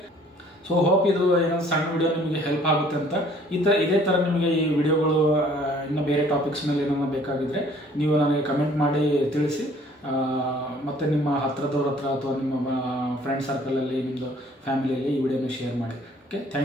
ಸೊ ಹೋಪ್ ಇದು ಏನೋ ಸಣ್ಣ ವಿಡಿಯೋ ನಿಮಗೆ ಹೆಲ್ಪ್ ಆಗುತ್ತೆ ಅಂತ. ಇದೇ ಥರ ನಿಮಗೆ ಈ ವಿಡಿಯೋಗಳು ಇನ್ನು ಬೇರೆ ಟಾಪಿಕ್ಸ್ ಮೇಲೆ ಏನಾದ್ರು ಬೇಕಾಗಿದ್ದರೆ ನೀವು ನನಗೆ ಕಮೆಂಟ್ ಮಾಡಿ ತಿಳಿಸಿ. ಮತ್ತು ನಿಮ್ಮ ಹತ್ರದವ್ರ ಹತ್ರ ಅಥವಾ ನಿಮ್ಮ ಫ್ರೆಂಡ್ ಸರ್ಕಲಲ್ಲಿ ನಿಮ್ಮದು ಫ್ಯಾಮಿಲಿಯಲ್ಲಿ ಈ ವಿಡಿಯೋನ ಶೇರ್ ಮಾಡಿ. ಓಕೆ,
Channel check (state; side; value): normal; both; correlation 0.56